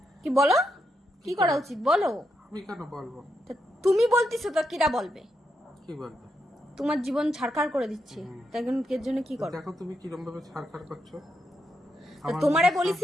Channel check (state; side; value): normal; both; correlation 0.82